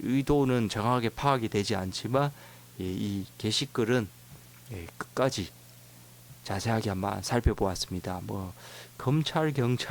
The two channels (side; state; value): both; identical; correlation 1.00